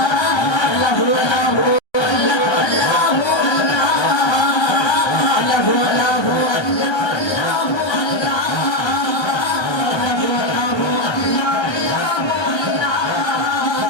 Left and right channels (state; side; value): late; right; 1.2 ms